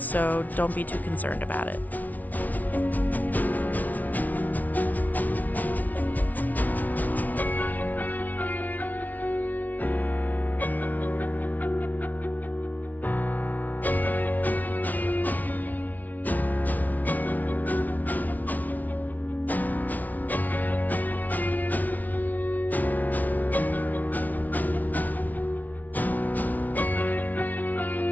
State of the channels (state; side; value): late; right; 0.077 ms